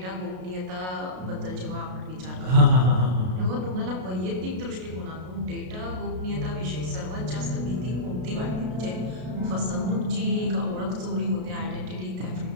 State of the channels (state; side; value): late; left; 33 ms